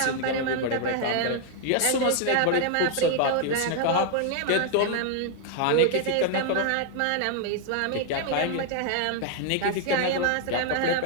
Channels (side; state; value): both; different; correlation 0.00